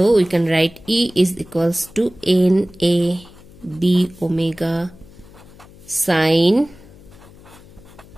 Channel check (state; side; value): noise; left; hum, 22 dB below the sound